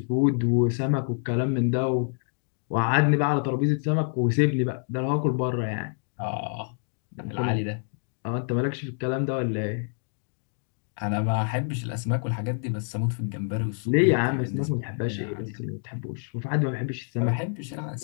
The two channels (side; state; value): right; silent; 60 dB below the other